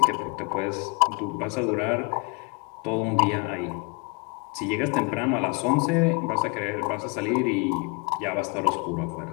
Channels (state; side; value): quieter; right; 30.5 dB